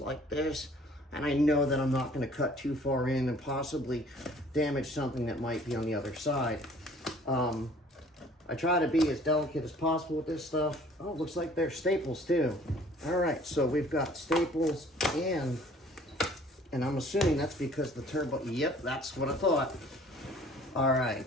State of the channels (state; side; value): normal; both; correlation 0.53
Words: this, and I know that I'm not going to cut too far in and possibly damage something that might be on the other side. I try to be as delicate as possible with this stuff. Oh, it looks like there's staples too. All right, so we've got staples and I'm assuming that's because the turbo, yep, that's what I thought. All